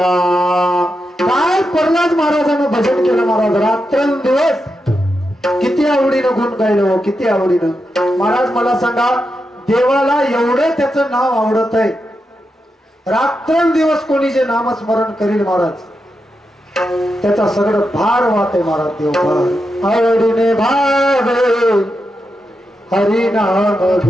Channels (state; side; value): normal; both; correlation 0.87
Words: काय प्रल्हाद महाराजांना भजन केलं महाराज, रात्रंदिवस किती आवडीनं गुण गायलं हो, किती आवडीनं. महाराज मला सांगा, देवाला एवढं त्याचं नाव आवडत आहे, रात्रंदिवस कोणी जे नामस्मरण करील महाराज त्याचा सगळं भार वाहते महाराज. देव भार आवडीने भावे हरिनाम